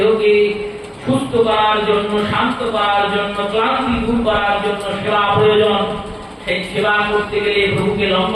সুস্থ করার জন্য, শান্ত করার জন্য, ক্লান্তি দূর করার জন্য সেবা প্রয়োজন। সেই সেবা করতে গেলে প্রভুকে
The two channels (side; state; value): both; identical; correlation 1.00